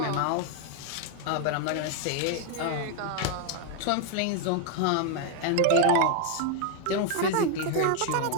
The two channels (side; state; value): both; different; correlation 0.00